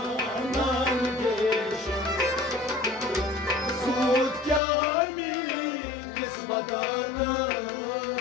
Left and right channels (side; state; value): right; drops out; at 4.6 s